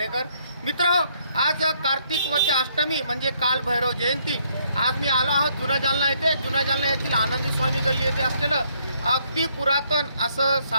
मित्रांनो, आज कार्तिक वती अष्टमी म्हणजे काल भैरव जयंती। आज मी आलो आहोत जुना जालना येथे। जुना जालना येथील आनंदी स्वामी गल्ली येथे असलेलं अगदी पुरातन असं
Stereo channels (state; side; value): inverted; both; correlation -0.69